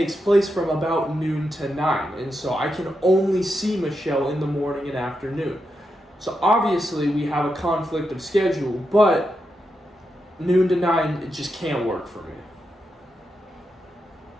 place from about noon to 9, and so I can only see Michelle in the morning and afternoon. So obviously we have a conflict of schedule, but noon to 9, it just can't work for me.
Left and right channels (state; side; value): normal; both; correlation 0.85